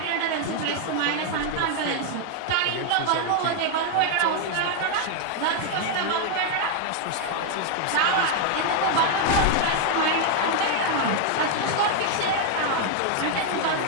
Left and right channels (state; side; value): different; both; correlation 0.00